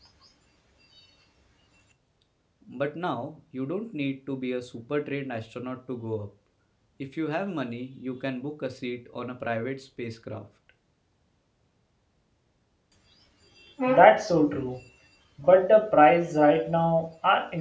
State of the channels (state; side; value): identical; both; correlation 1.00